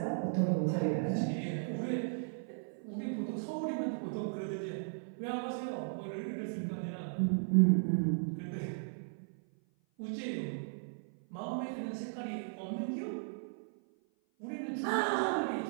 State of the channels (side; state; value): left; silent; 54 dB below the other